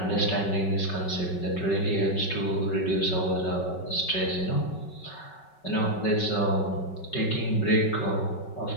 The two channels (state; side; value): late; right; 5.3 ms